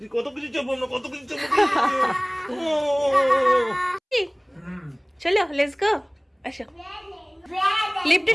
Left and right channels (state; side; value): identical; both; correlation 1.00